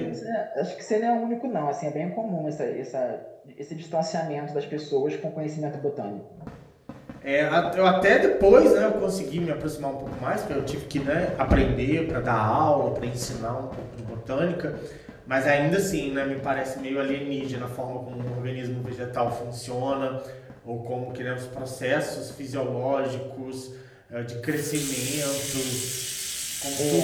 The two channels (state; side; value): identical; both; correlation 1.00